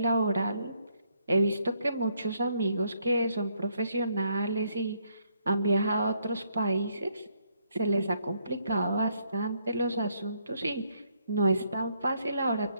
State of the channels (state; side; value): inverted; both; correlation -0.73